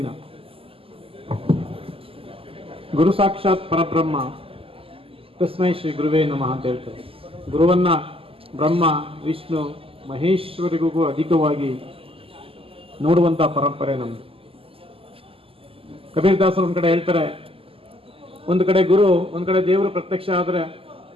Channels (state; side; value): late; left; 0.27 ms